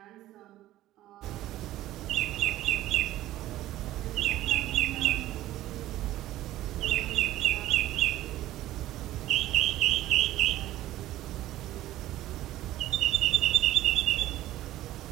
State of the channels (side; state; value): left; quieter; 14.7 dB